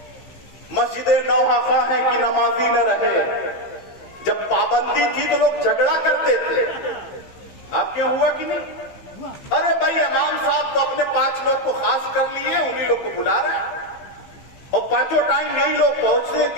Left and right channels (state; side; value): late; right; 15 ms